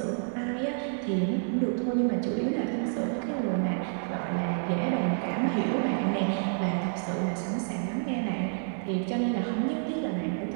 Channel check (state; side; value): silent; left; digital silence